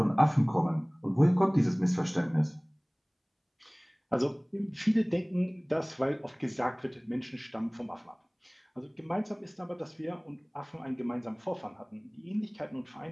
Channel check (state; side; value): identical; both; correlation 1.00